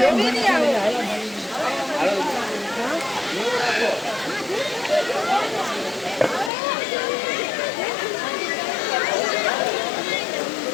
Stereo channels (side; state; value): right; drops out; at 6.5 s